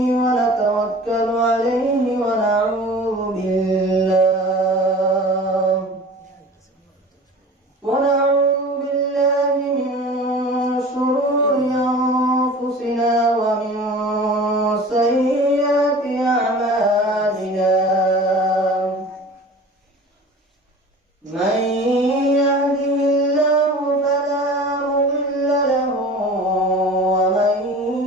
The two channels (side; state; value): both; normal; correlation 0.40